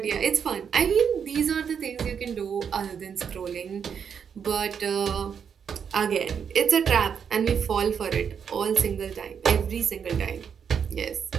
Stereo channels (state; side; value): quieter; left; 7.2 dB